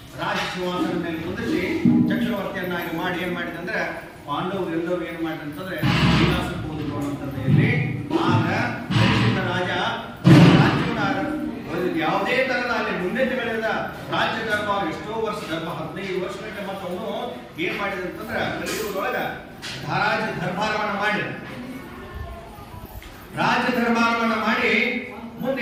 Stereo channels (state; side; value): identical; both; correlation 1.00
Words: ರಾಜ ಸಿಂಹಾಸನದ ಮೇಲೆ ಕುಂದಿಸಿ ಚಕ್ರವರ್ತಿಯನ್ನಾಗಿ ಮಾಡಿ ಏನ್ ಮಾಡಿದಂದ್ರೆ, ಪಾಂಡವರು ಎಲ್ಲರೂ ಏನ್ ಮಾಡಿದಂತಂದ್ರೆ ವಿಲಾಸಕ್ಕೆ ಹೋದ್ರು ಅಂತಂದ್ರೆ ಇಲ್ಲಿ. ಆಗ ಪರೀಕ್ಷಿತ ರಾಜ ರಾಜ್ಯವನ್ನ ಯಾವುದೇ ತರದ ಅಲ್ಲಿ ಮುನ್ನಡೆಗಳಿಂದ ರಾಜ್ಯ ದರ್ಬಾರ ಎಷ್ಟೋ ವರ್ಷ, 15 ವರ್ಷಕ್ಕೆ ಮತ್ತೆ ಅವನು ಏನ್ ಮಾಡಿದಂತಂದ್ರೆ ಕಲಿಯುಗದೊಳಗ ರಾಜ್ಯ ದರ್ಬಾರವನ್ನ ಮಾಡಿ ಮುಂದೆ